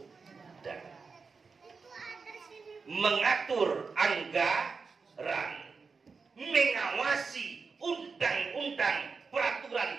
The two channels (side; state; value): left; quieter; 4.8 dB